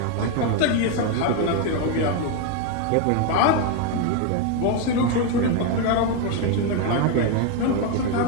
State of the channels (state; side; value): different; both; correlation 0.01